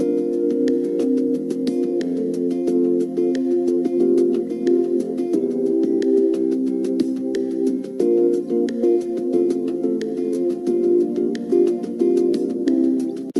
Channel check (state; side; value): identical; both; correlation 1.00